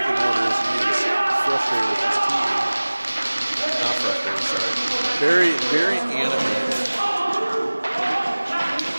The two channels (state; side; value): inverted; both; correlation -1.00